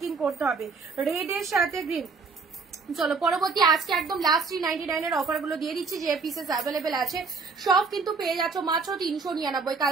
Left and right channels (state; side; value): quieter; left; 4.6 dB